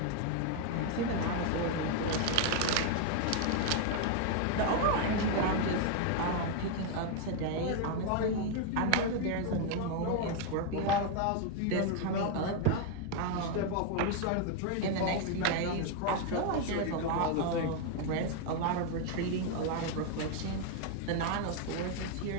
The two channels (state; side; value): different; both; correlation 0.01